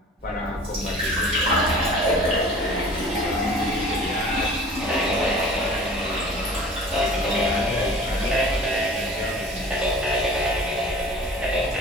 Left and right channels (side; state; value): both; normal; correlation 0.44